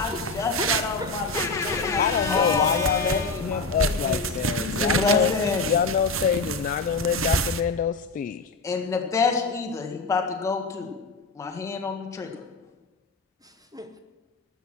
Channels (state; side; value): quieter; right; 3.6 dB